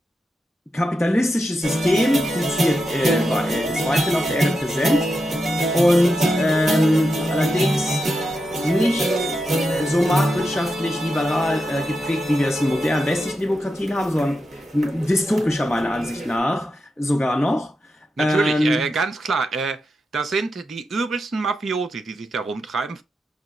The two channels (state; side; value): normal; both; correlation 0.87